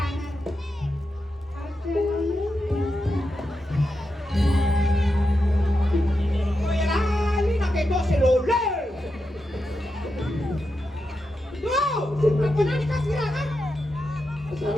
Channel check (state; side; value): normal; both; correlation 0.87